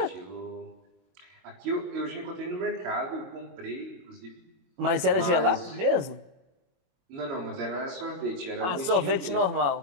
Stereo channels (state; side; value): late; left; 22 ms